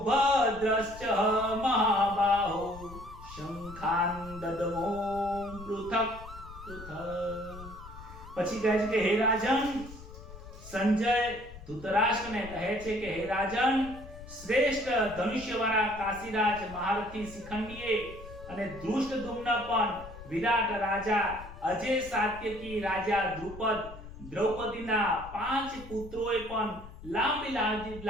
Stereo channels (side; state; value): left; noise; rumble, 15 dB below the sound